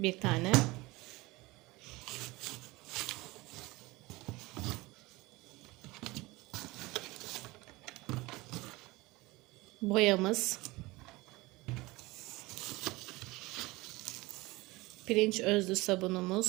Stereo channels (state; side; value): quieter; left; 21.6 dB